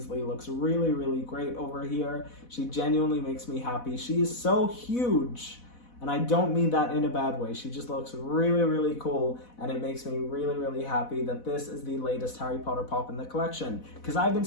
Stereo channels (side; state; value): right; late; 4.1 ms